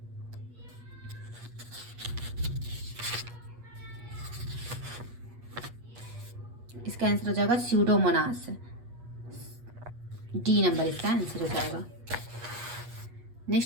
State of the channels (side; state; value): left; late; 8.4 ms